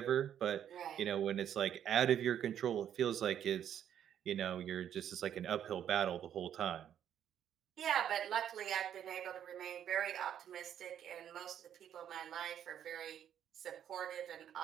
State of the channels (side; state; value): left; quieter; 9.8 dB